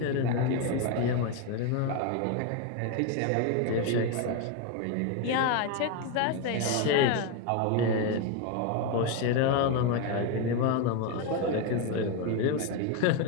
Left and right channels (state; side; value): different; both; correlation 0.02